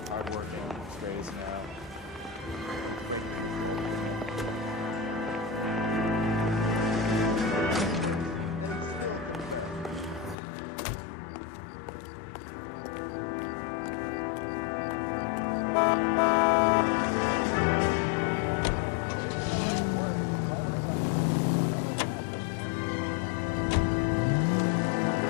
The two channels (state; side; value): drops out; right; at 10.4 s